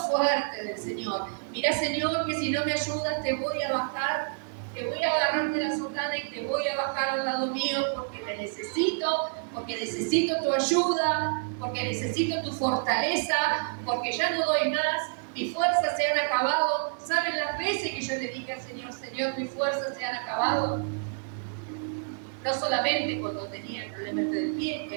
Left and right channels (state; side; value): silent; left; digital silence